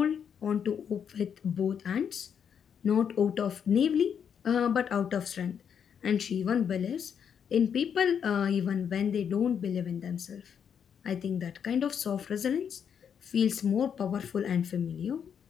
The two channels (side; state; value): right; quieter; 7.7 dB